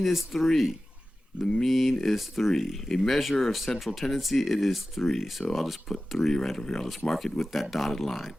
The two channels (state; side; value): normal; both; correlation 0.95